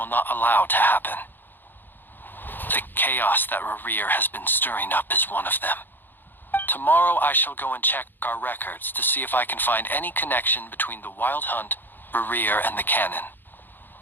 not allow to happen. The chaos that Rerir has been stirring up is one of them. Tomorrow I shall go and check our records to see if I can find any connection between the Wild Hunt, Rerir, and the Cannon.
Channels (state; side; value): late; right; 0.093 ms